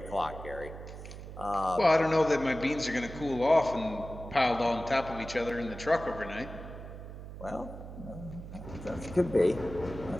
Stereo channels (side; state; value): right; noise; hum, 12 dB below the sound